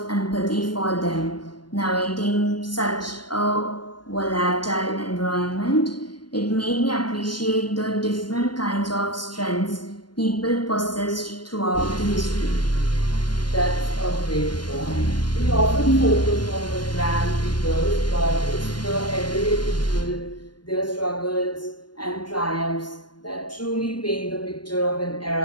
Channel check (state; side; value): late; right; 0.71 ms